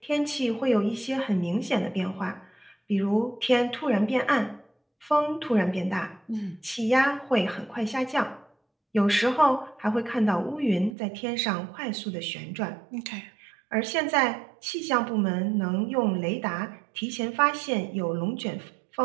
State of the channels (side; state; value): left; drops out; at 11.0 s